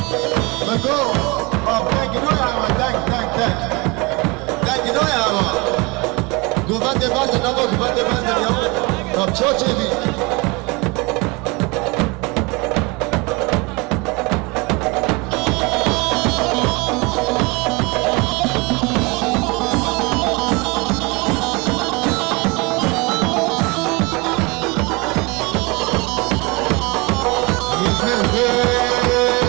بگو دنگینوی همه دنگینوی همه گومنده بردن نما گومنده بردن یا چا چه بی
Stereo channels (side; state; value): left; quieter; 26.8 dB